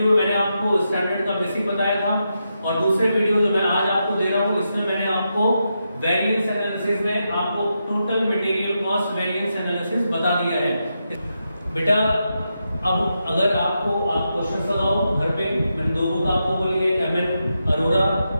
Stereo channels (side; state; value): both; inverted; correlation -0.86